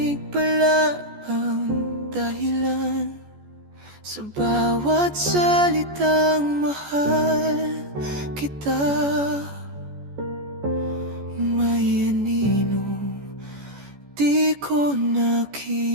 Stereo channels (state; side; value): late; left; 14 ms